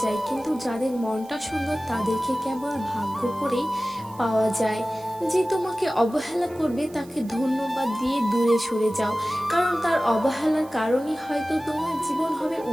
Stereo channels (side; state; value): right; noise; hiss, 24 dB below the sound